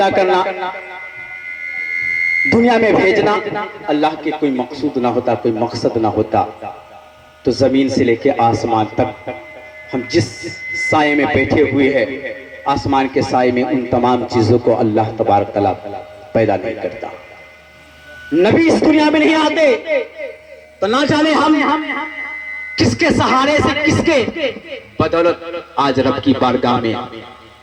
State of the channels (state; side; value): identical; both; correlation 1.00